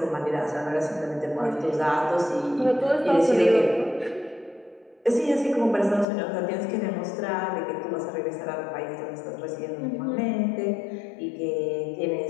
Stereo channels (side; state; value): right; drops out; at 6.1 s